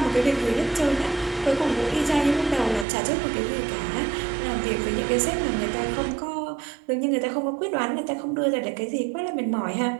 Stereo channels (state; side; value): drops out; left; at 2.9 s